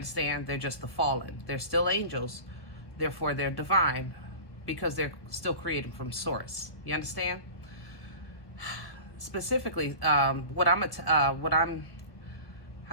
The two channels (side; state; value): right; late; 1.2 ms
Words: They're just the fallen. They're still angels. Therefore, they're divine because they're still created from source. You understand? Specifically, what I'm,